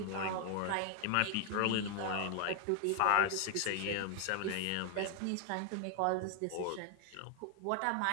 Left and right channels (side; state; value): both; different; correlation 0.00